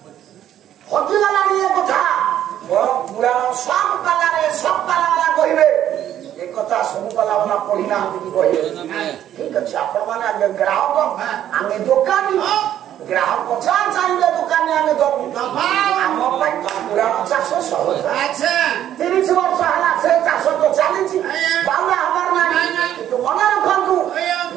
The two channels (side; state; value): left; quieter; 11.2 dB